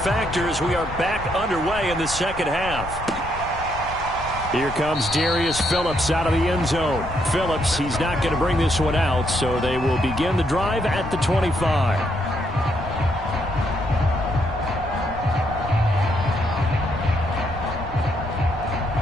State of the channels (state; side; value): noise; left; rumble, 12 dB below the sound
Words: as we are back underway in the second half. Here comes Darius Phillips out of the end zone. Phillips, he's not going to bring this one out, so they will begin the drive at the 25.